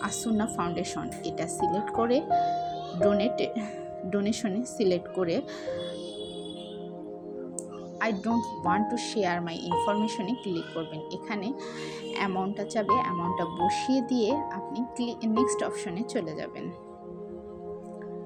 আসুন্না ফাউন্ডেশন, এটা সিলেক্ট করে ডোনেশনে সিলেক্ট করে I don't want to share my ইনফরমেশনে ক্লিক করবেন। এখানে অ্যামাউন্টটা চাবে, অ্যামাউন্টটা বসিয়ে দিয়ে আপনি নেক্সট অপশনে চলে যাবেন।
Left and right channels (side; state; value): both; identical; correlation 1.00